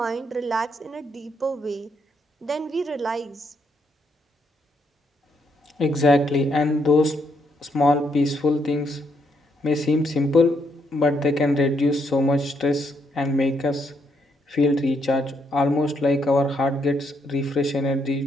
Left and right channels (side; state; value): both; normal; correlation 0.75